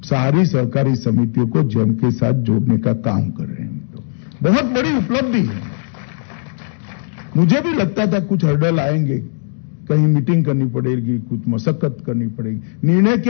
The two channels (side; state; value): right; silent; digital silence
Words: सारी सहकारी समितियों को जेम के साथ जोड़ने का काम कर रहे हैं। बहुत बड़ी उपलब्धि है। मुझे भी लगता था कुछ हर्डल आएंगे, कहीं मीटिंग करनी पड़ेगी, कुछ मशक्कत करनी पड़ेगी। निर्णय